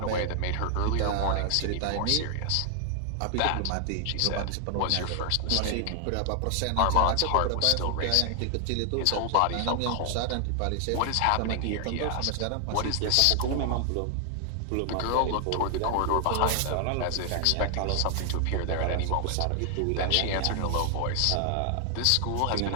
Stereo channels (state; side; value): different; both; correlation 0.00